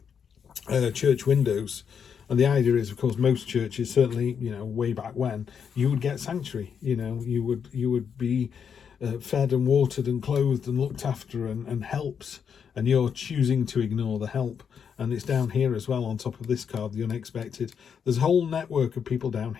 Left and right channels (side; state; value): right; quieter; 7.2 dB